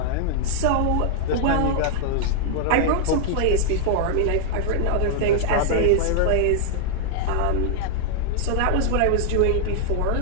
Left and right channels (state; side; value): different; both; correlation -0.01